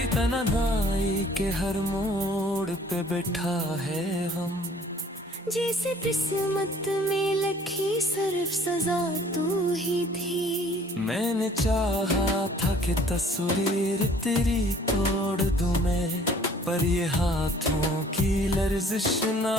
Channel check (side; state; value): both; normal; correlation 0.55